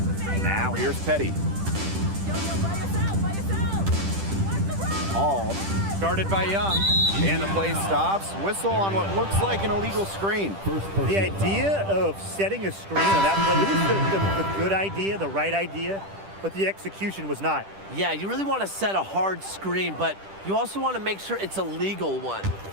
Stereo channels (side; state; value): left; late; 10 ms